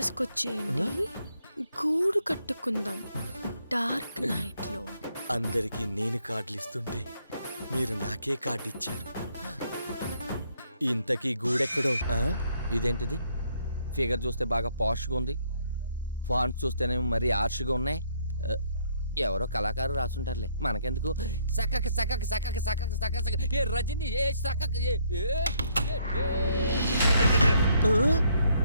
వచ్చేయండి, గూడు కట్టుకుందాం డార్క్ నైట్ లో. అందరికి నేను కార్డులు ఇస్తుంటే మీరు నాకే కార్డు ఇచ్చారు. ఇంతకీ గూడెక్కడో? ఇదేంటిది? ఫిగర్ చూస్తే బాగా పాష్గా ఉంది, ఫాంట్స్ చూస్తేనే మరీ ఆర్ష్గా ఉన్నాయి. ఎవరో కళాకారు రాసుంటారులే, మనకెందుకు. సకక సకక సకక సకక సకక సక ఏ రజని ఏ సకక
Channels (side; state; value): both; inverted; correlation -0.70